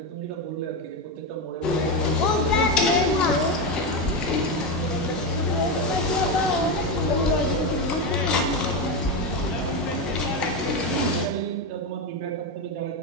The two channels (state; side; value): normal; both; correlation 0.13